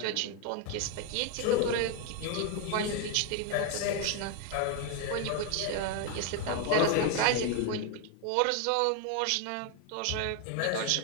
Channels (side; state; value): both; different; correlation 0.01